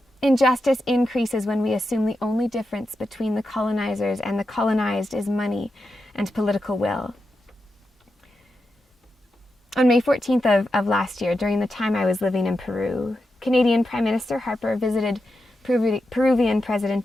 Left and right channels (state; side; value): normal; both; correlation 0.88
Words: injustice increases when we assume the only difference between the colonizers and the colonized is money and political will. On May 14th of last year, during the time I was living in Peru, Canadian Prime Minister Harper visited Peruvian